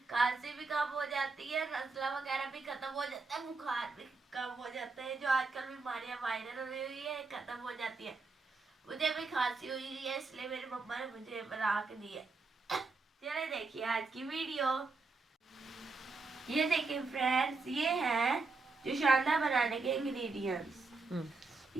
भी कम हो जाती है, नज़ला वगैरह भी खत्म हो जाता है, बुखार भी कम हो जाता है। जो आजकल बीमारियां वायरल हो रही है खत्म हो जाती है। मुझे भी खांसी हुई है, इसलिए मेरी मम्मा ने मुझे बना के दी है। चलिए देखिए आज की वीडियो। ये देखिए फ्रेंड्स, ये है जोशांदा बनाने के इंग्रेडिएंट्स।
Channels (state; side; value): quieter; left; 3.9 dB